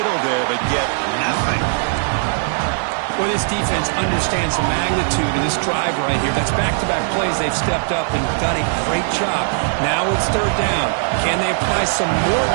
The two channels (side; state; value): left; silent; digital silence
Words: there, but get nothing. Well, this defense understands the magnitude of this drive right here. That's back-to-back plays. They've stepped up and done a great job. Now it's third down. Can they apply some more